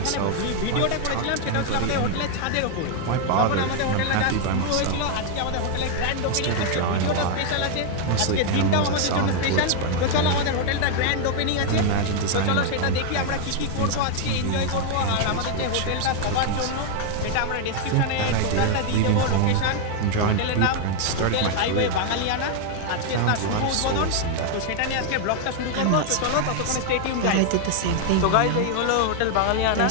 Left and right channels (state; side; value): different; both; correlation 0.00